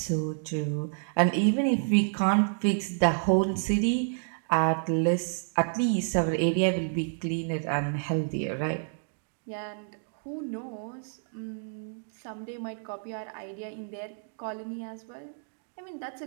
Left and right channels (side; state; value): left; silent; digital silence